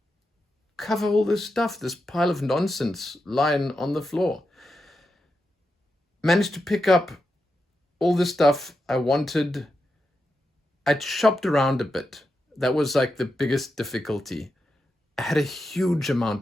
cover all this stuff, this pile of nonsense lying on the floor. Managed to pick up all the stuff I wanted I'd shopped around a bit. That was like the biggest difficulty. I had a huge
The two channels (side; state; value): both; normal; correlation 0.87